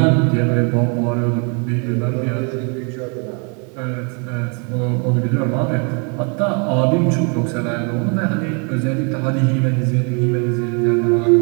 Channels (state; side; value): quieter; left; 35.8 dB